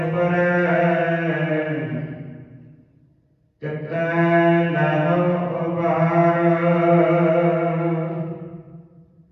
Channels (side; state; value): both; identical; correlation 1.00